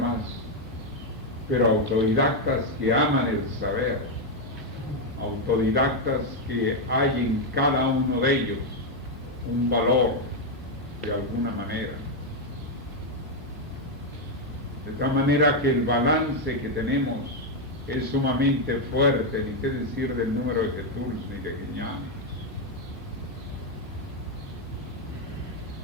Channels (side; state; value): both; normal; correlation 0.02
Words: pero autodidactas que aman el saber, autodidactas que hay en cada uno de ellos un valor de alguna manera. De tal manera que el balance que tenemos es sumamente fuerte, ni qué decir del número de Jesús ni de Guiñanes.